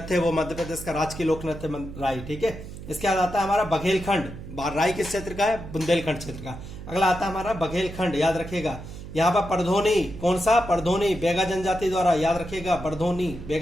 है, वो मध्य प्रदेश का राजकीय लोक नृत्य राय, ठीक है। इसके बाद आता है हमारा बघेलखंड, राई किस क्षेत्र का है, बुंदेलखंड क्षेत्र का। अगला आता है हमारा बघेलखंड, याद रखिएगा। यहाँ पर परधोनी, कौन सा, परधोनी बेगा जनजाति द्वारा, याद रखिएगा, परधोनी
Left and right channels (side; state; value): right; noise; hum, 12 dB below the sound